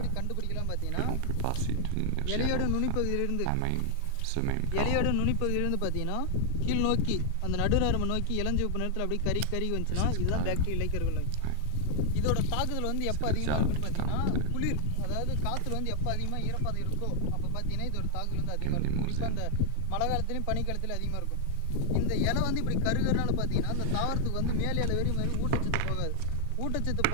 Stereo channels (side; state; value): both; different; correlation 0.00